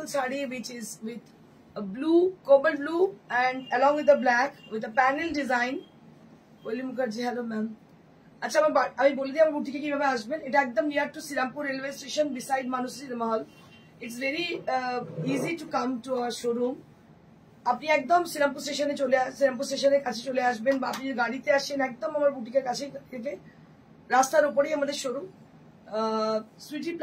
sari which is with a blue, cobalt blue, and along with the black with a panel design. Koeli Mukherjee, hello ma'am. আচ্ছা, আমি বলে দিই আমার বুটিকে কিভাবে আসবেন। এটা একদম near to Srirampur railway station, beside Manushree Mahal. It's very easy to come to our showroom. আপনি একদম শ্রীরামপুর স্টেশনের কাছে চলে আসবেন, বা আপনি গাড়িতে আসেন একদম আমার বুটিকের কাছে থেকে রাস্তার উপরেই আমাদের showroom, Sweety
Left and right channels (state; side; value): identical; both; correlation 1.00